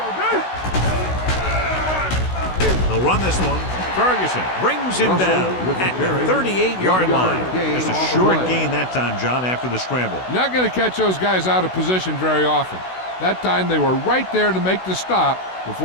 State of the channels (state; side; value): late; right; 16 ms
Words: They'll run this one. Ferguson brings him down at the 38-yard line. Just a short gain that time, John, after the scramble. You're not going to catch those guys out of position very often. That time they were right there to make the stop